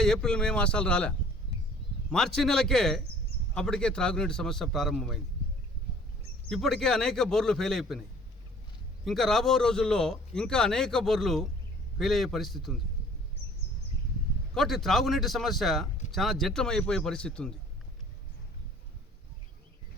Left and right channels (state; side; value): normal; both; correlation 0.52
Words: ఏప్రిల్ మే మాసాలు రాలే. మార్చి నెలకే అప్పటికే త్రాగునీటి సమస్య ప్రారంభమైంది. ఇప్పటికే అనేక బోర్లు ఫెయిల్ అయిపోయినాయి. ఇంకా రాబో రోజుల్లో ఇంకా అనేక బోర్లు ఫెయిల్ అయ్యే పరిస్థితి ఉంది. కాబట్టి త్రాగునీటి సమస్య చాలా జటిలమైపోయే పరిస్థితి ఉంది.